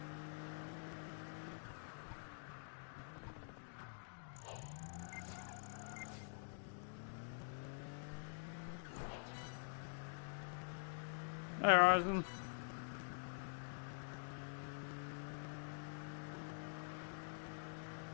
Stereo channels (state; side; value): silent; right; digital silence